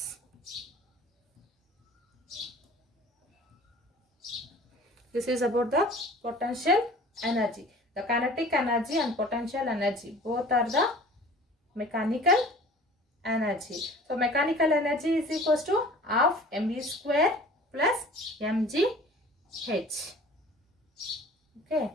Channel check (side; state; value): both; normal; correlation 0.45